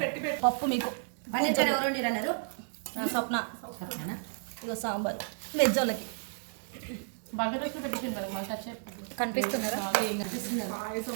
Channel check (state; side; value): silent; left; digital silence